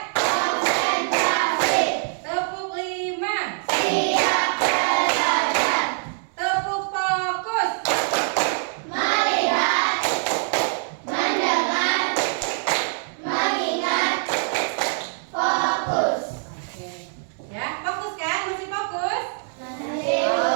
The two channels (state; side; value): silent; left; digital silence